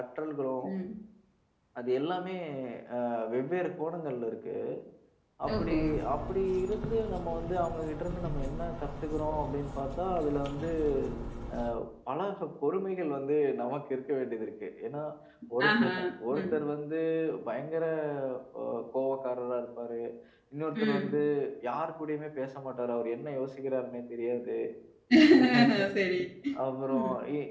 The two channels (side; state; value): both; identical; correlation 1.00